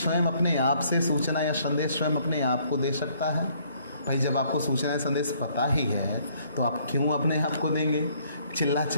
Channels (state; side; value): inverted; both; correlation -0.64